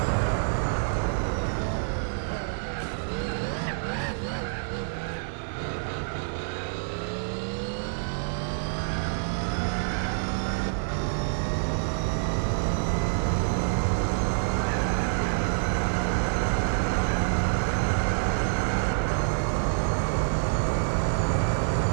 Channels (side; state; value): left; silent; digital silence